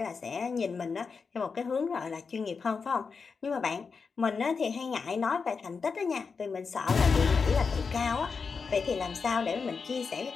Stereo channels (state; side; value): quieter; right; 5.2 dB